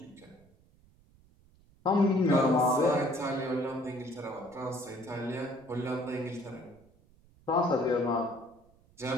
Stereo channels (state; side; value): noise; right; rumble, 29 dB below the sound